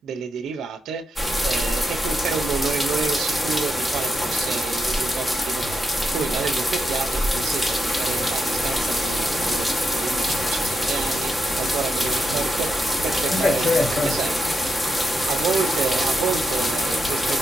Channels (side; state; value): both; normal; correlation 0.84